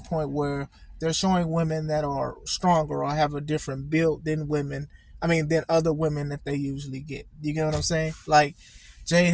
where they're showing women that are stronger or have a different build than than other women that they usually get. You get what I'm saying? Like, Jade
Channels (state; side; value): identical; both; correlation 1.00